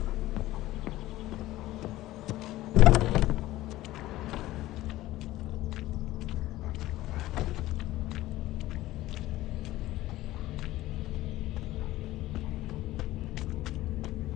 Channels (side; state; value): right; quieter; 16.2 dB